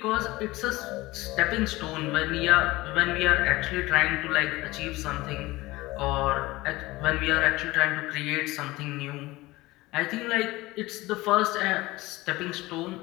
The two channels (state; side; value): quieter; right; 19.7 dB